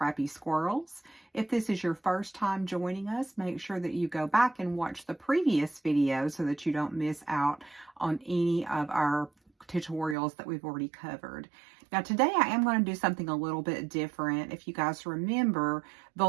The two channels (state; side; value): drops out; left; at 10.2 s